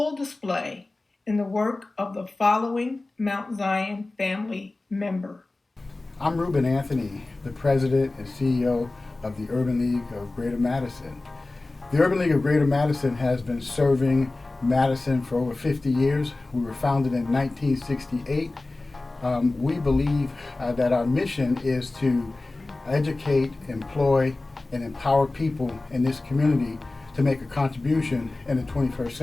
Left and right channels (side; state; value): right; quieter; 3.1 dB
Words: display in the work of the following Mount Zion family member. I'm Ruben Anthony, the President and CEO of the Urban League of Greater Madison. The Urban League of Greater Madison has been serving Madison for over 50 years. We were founded in 1968. We believe that our mission is to educate, employ, and empower people in this community to make a contribution in the 21st